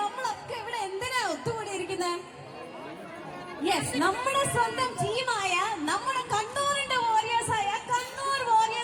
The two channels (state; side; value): identical; both; correlation 1.00